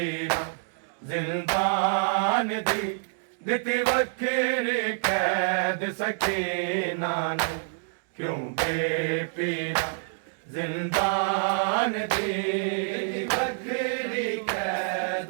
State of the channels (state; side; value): silent; left; digital silence